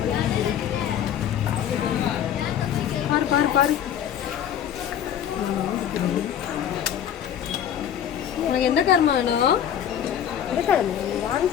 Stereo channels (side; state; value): right; quieter; 9.5 dB